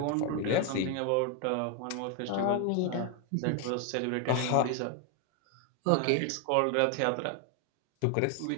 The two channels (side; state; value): both; different; correlation 0.01